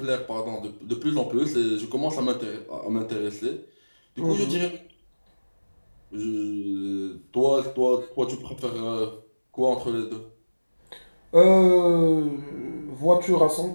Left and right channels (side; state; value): both; inverted; correlation -1.00